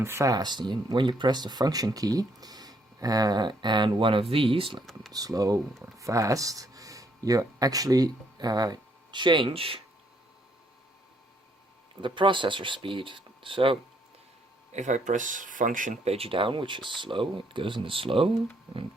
fast. When you press the function key and one of these, like slow or fast, you actually change the processor speed. So if I press function page down, which is slow, it goes into slow and it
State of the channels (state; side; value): normal; both; correlation 0.70